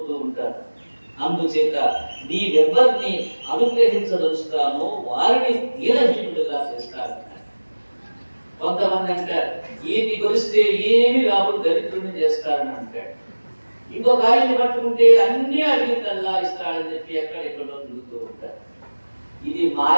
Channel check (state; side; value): inverted; both; correlation -1.00